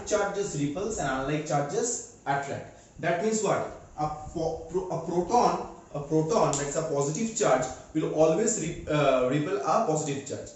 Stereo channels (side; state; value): both; identical; correlation 1.00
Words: charges repels and unlike charges attract. That means what? A proton, that's a positive charge, will always repel a positive charge.